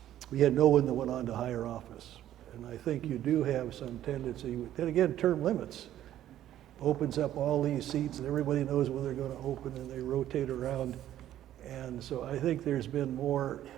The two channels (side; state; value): left; quieter; 12.3 dB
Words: no one that went on to higher office. And I think you do have some tendency, then again, term limits opens up all these seats and everybody knows when they're going to open and they rotate around. And so I think there's been more,